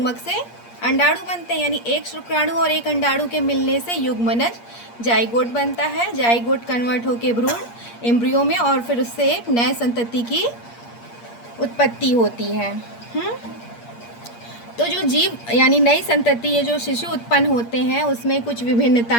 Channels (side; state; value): right; late; 8.5 ms